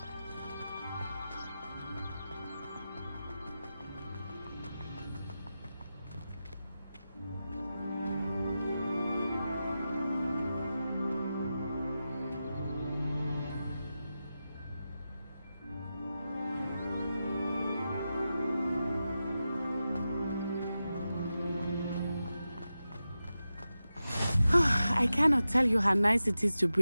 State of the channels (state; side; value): inverted; both; correlation -0.92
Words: I cannot tell you how nice it is to